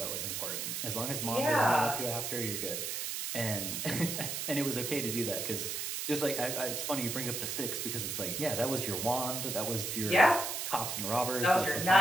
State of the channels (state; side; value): noise; right; hiss, 3 dB below the sound